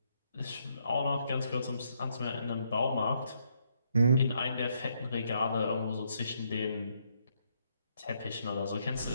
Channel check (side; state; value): both; inverted; correlation -0.74